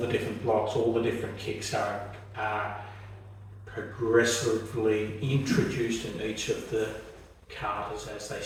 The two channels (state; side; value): identical; both; correlation 1.00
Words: different blocks, all the different kicks are progressively introduced in each of the katas as they